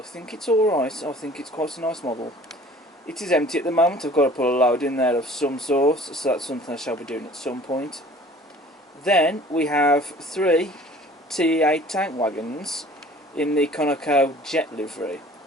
think it's alright. I think it's quite a nice model. It is empty at the moment. I've got to put a load in there of some sort, so that's something I shall be doing at some point. Then we have 3 TE8 tank wagons in the Conoco Jet livery.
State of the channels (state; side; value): normal; both; correlation 0.49